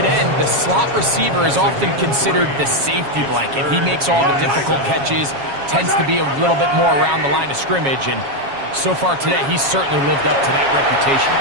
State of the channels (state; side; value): late; left; 7.3 ms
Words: end, the slot receiver is often considered the safety blanket. He makes all the difficult catches, tends to be a little bit more around the line of scrimmage, and so far today, he's certainly lived up to that reputation.